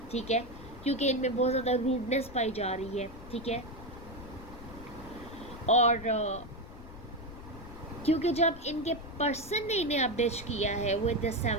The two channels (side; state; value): left; noise; rumble, 15 dB below the sound